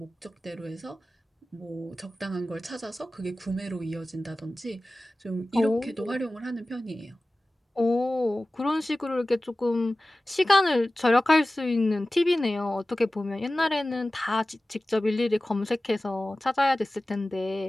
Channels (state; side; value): normal; both; correlation 0.96